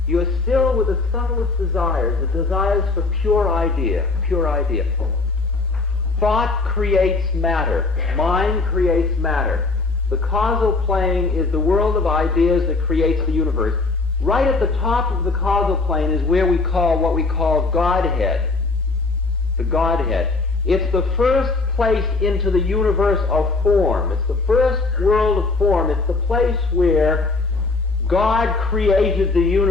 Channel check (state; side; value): quieter; right; 3.7 dB